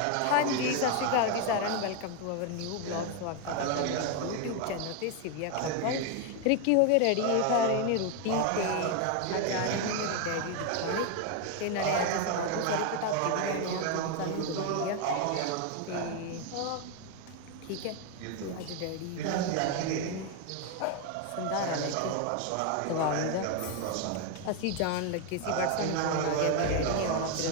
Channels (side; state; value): both; different; correlation 0.01